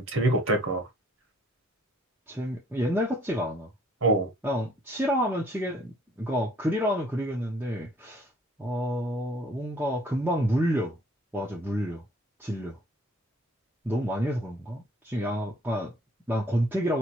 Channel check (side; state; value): both; normal; correlation 0.59